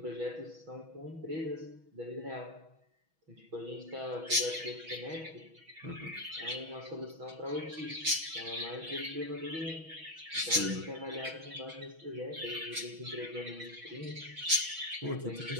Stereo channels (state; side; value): late; left; 6.2 ms